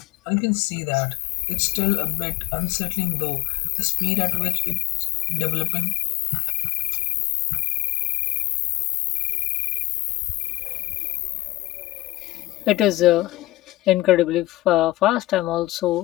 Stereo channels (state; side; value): quieter; right; 18.6 dB